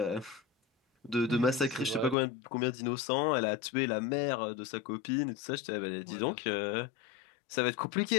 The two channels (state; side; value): drops out; right; at 2.1 s